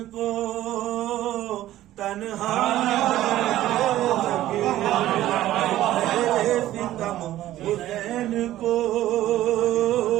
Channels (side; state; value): left; quieter; 14.2 dB